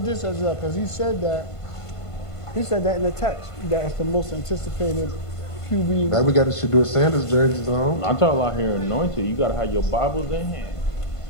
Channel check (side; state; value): right; late; 1.5 ms